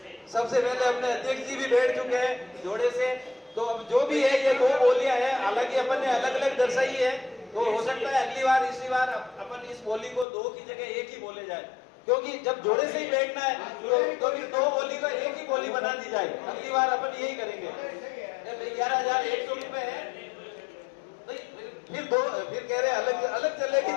सबसे पहले अपने अध्यक्ष जी भी बैठ चुके हैं जोड़े से, तो अब जो भी है ये दो बोलियां हैं, हालांकि अपन ने अलग अलग दर्शाई है, तो हो सकता है अगली बार इसी बार अपन इस बोली को दो की जगह एक ही बोले जाए, क्योंकि जब जोड़े से ही बैठना है तो फिर दो बोली का एक ही बोली बना दी जाए। अगली बार अपन यही करेंगे। 11,100 रुपए है, फिर कह रहे अलग अलग चलेगी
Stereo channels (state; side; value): drops out; right; at 10.2 s